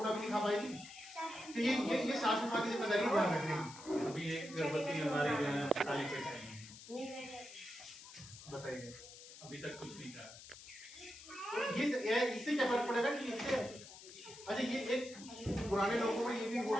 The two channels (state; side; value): noise; left; hiss, 16 dB below the sound